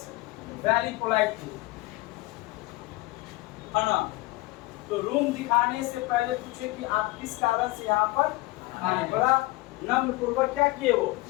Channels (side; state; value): right; quieter; 21.1 dB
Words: very politely, है ना। तो रूम दिखाने से पहले पूछे कि आप किस कारण से यहाँ पर आए। बड़ा नम्र पूर्वक क्या किए वो